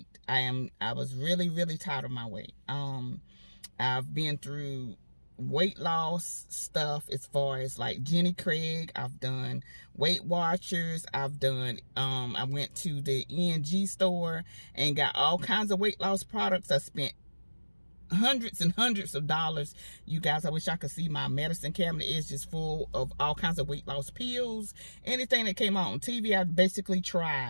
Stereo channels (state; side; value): inverted; both; correlation -1.00